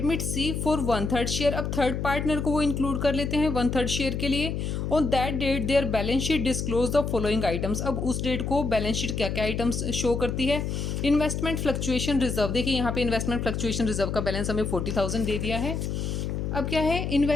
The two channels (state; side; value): noise; left; hum, 2 dB below the sound